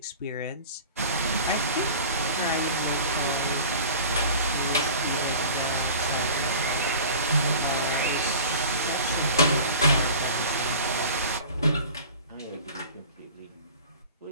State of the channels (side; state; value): both; inverted; correlation -0.40